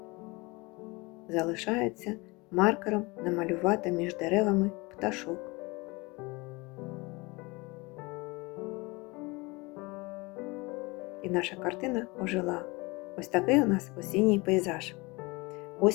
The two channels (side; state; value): right; quieter; 24.9 dB